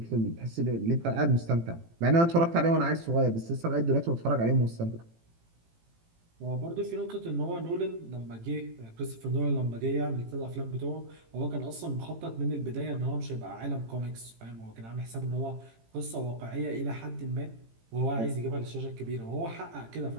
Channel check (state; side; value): late; left; 18 ms